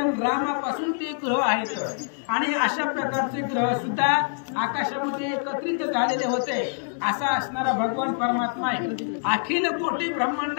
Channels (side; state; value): right; silent; digital silence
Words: रामापासून ते ग्रह आहेत आणि अशा प्रकारचे ग्रह सुद्धा आकाशामध्ये एकत्रित झालेले होते. असा असणारा भगवान परमात्मा आहे, अखिल कोटी